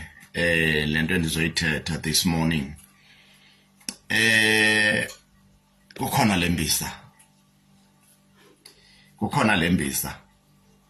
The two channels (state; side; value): identical; both; correlation 1.00